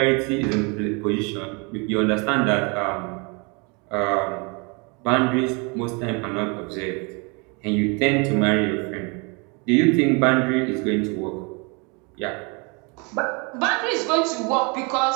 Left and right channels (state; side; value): quieter; left; 31.4 dB